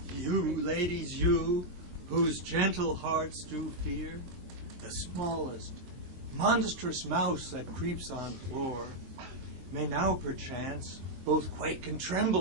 You, ladies, you, whose gentle hearts do fear the smallest, monstrous mouse that creeps on floor, may now perchance both quake and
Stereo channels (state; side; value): late; left; 23 ms